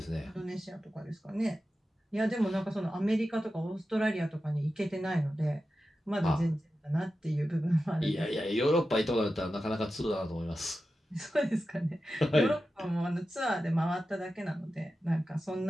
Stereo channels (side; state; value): both; normal; correlation 0.92